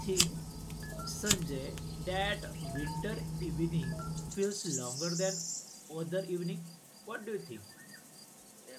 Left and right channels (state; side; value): identical; both; correlation 1.00